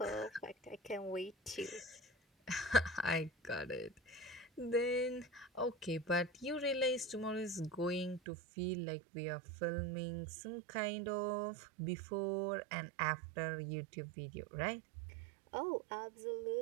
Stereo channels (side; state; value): left; drops out; at 8.2 s